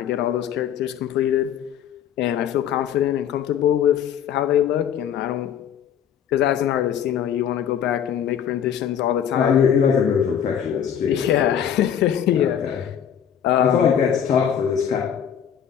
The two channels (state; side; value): quieter; right; 8.9 dB